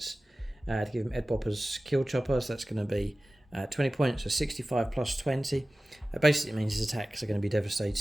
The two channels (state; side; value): normal; both; correlation 0.96